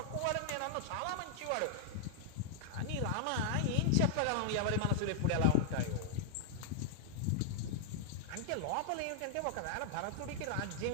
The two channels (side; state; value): both; different; correlation -0.01